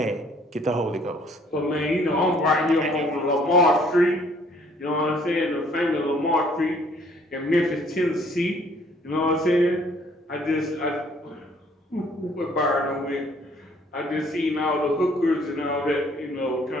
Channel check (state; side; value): normal; both; correlation 0.60